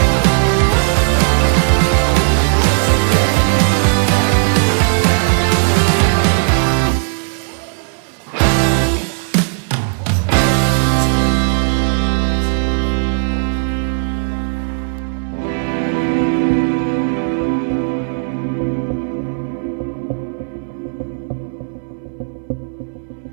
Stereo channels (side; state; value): left; silent; 61 dB below the other